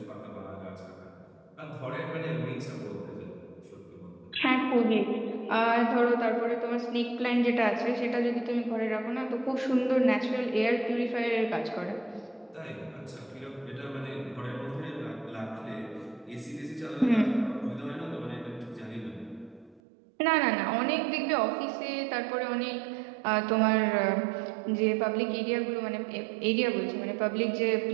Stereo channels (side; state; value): left; drops out; at 19.8 s